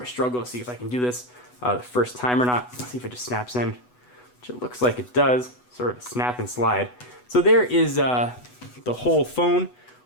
a struggle to see if I can do this the first time or not. Let's see if it just snaps in, which it looks like it does. Sort of a snap and slide. So there is the whole phone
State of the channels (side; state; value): right; late; 8.1 ms